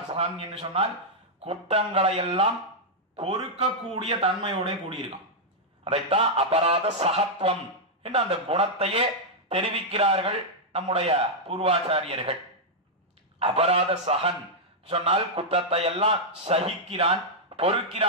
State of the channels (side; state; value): both; normal; correlation -0.04